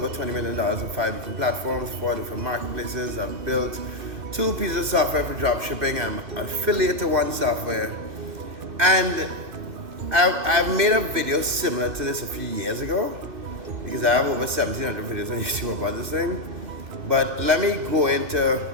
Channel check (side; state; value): left; late; 2.5 ms